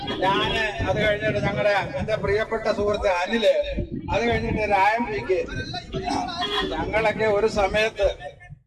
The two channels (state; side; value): identical; both; correlation 1.00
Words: ഞാന് അത് കഴിഞ്ഞിട്ട് എന്റെ പ്രിയപ്പെട്ട സുഹൃത്ത് അനില്, അത് കഴിഞ്ഞിട്ട് രായംപിക്ക്, ഞങ്ങളൊക്കെ